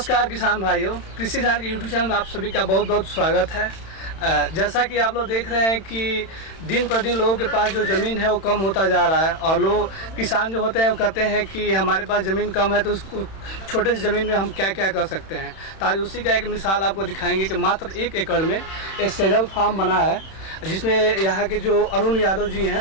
किसान भाइयों, कृषि जान के यूट्यूब चैनल में आप सभी का बहुत बहुत स्वागत है। जैसा कि आप लोग देख रहे हैं कि दिन पर दिन लोगों के पास जो ज़मीन है वो कम होता जा रहा है और लोग किसान जो होते हैं वो कहते हैं कि हमारे पास ज़मीन कम है तो उसको छोटे से ज़मीन में हम क्या क्या कर सकते हैं। तो आज उसी का एक मिसाल आपको दिखाएंगे कि मात्र 1 एकड़ में एक सेजल फार्म बना है, जिसमें यहाँ के जो अरुण यादव जी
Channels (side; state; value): right; late; 31 ms